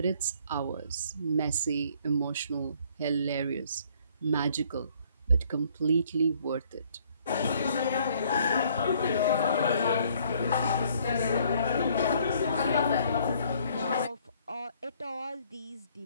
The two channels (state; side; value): inverted; both; correlation -0.62